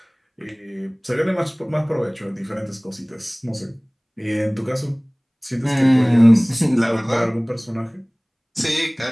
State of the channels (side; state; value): both; identical; correlation 1.00